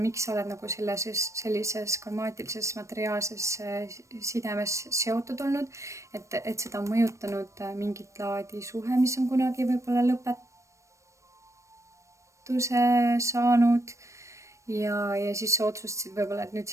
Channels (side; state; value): left; late; 0.15 ms